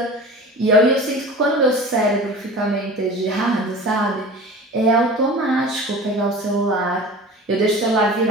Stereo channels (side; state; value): both; normal; correlation 0.37